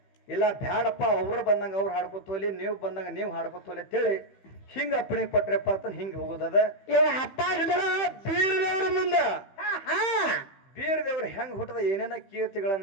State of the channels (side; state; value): right; late; 15 ms